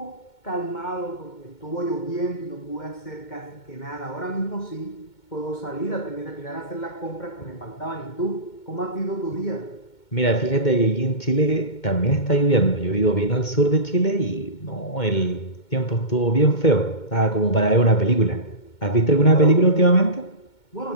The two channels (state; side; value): late; right; 2.2 ms